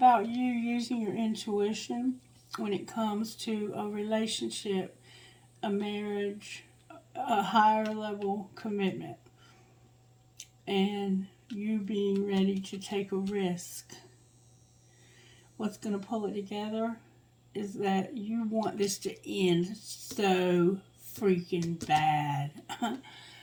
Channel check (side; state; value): both; identical; correlation 1.00